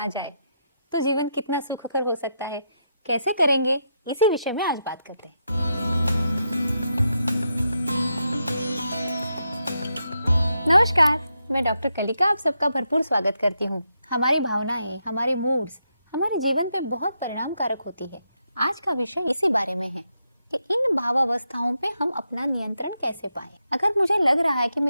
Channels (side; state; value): both; inverted; correlation -0.83